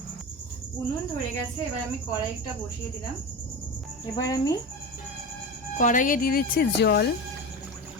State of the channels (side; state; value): both; normal; correlation 0.25